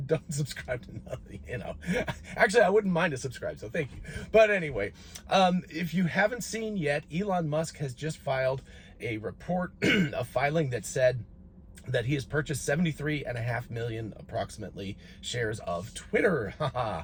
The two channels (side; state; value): both; identical; correlation 1.00